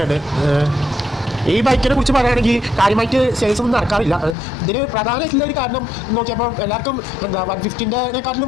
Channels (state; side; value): drops out; right; at 4.4 s